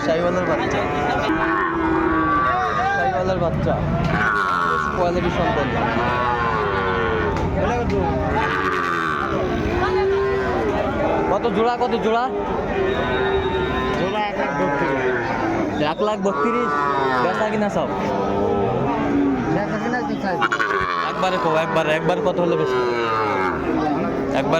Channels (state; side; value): identical; both; correlation 1.00